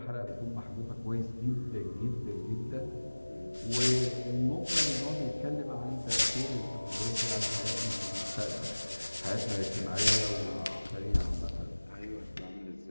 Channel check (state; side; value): inverted; both; correlation -1.00